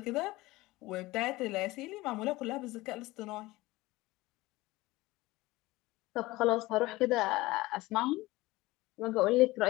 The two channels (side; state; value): right; quieter; 19.6 dB